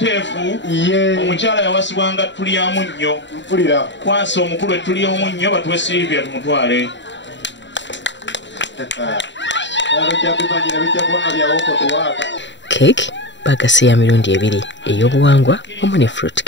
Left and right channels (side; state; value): right; late; 0.53 ms